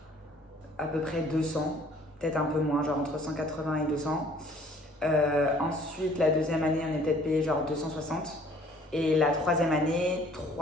à peu près 200, peut-être un peu moins, genre entre 180 et 200. Ensuite, la 2e année, on est peut-être payé genre 260. Et la 3e année,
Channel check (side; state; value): both; normal; correlation 0.56